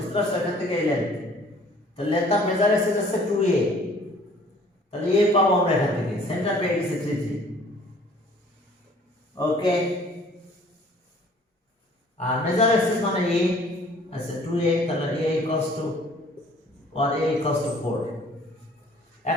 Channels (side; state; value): both; normal; correlation 0.54